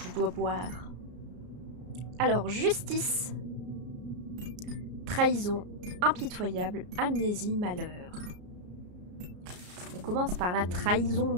dois boire. Alors, justice. Trahison, impitoyable, amnésie, malheur. On commence par la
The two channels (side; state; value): left; late; 33 ms